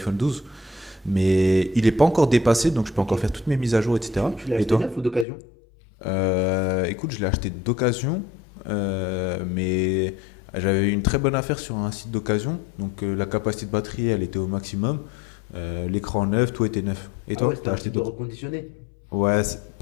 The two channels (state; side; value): drops out; right; at 5.2 s